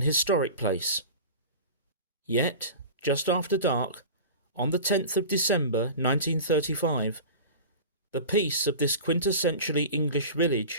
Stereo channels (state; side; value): inverted; both; correlation -0.34